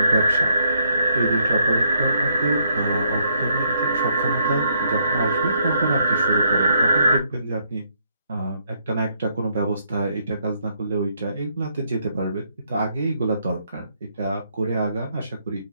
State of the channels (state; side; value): inverted; both; correlation -0.73